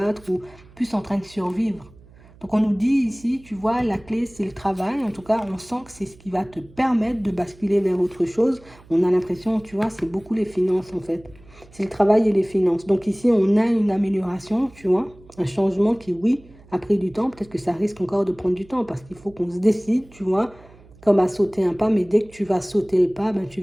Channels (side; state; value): right; noise; hum, 24 dB below the sound